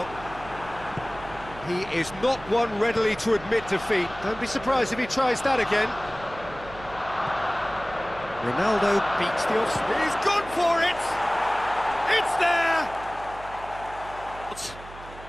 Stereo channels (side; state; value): right; noise; hum, 17 dB below the sound